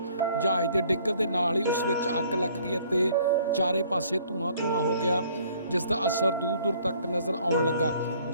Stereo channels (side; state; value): both; inverted; correlation -0.59